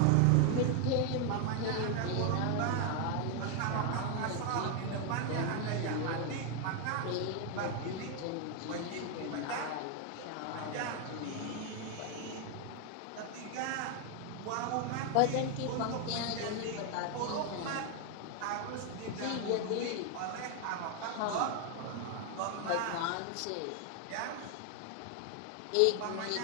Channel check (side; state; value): both; different; correlation 0.01